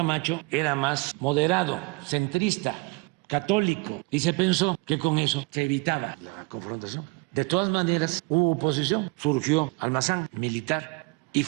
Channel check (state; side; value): quieter; left; 28.6 dB